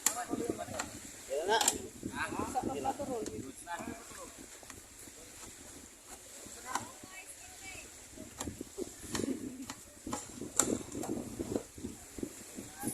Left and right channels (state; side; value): identical; both; correlation 1.00